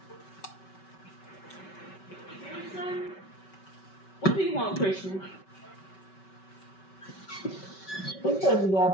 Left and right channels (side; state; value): right; late; 5.2 ms